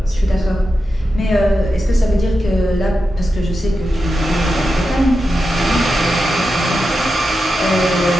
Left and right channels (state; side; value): normal; both; correlation 0.89